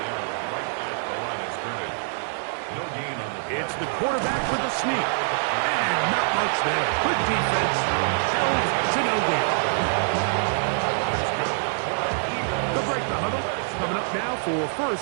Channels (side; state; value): left; silent; digital silence